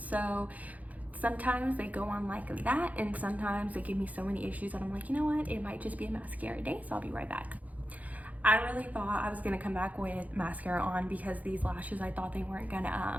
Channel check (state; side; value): late; left; 0.076 ms